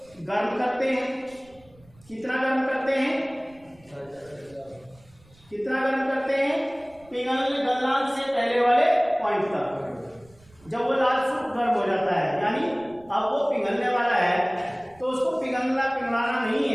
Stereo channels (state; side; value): noise; right; rumble, 28 dB below the sound